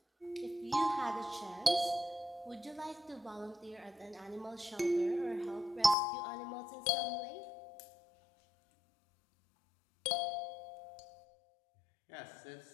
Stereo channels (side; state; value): right; drops out; at 6.0 s